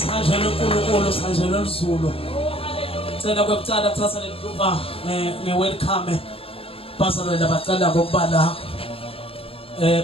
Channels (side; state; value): right; late; 0.27 ms